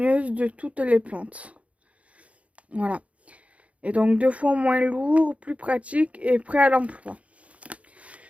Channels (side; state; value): left; late; 0.065 ms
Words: de toutes les plantes. Voilà. Et donc 2 fois moins lourd, plus pratique et prêt à l'emploi.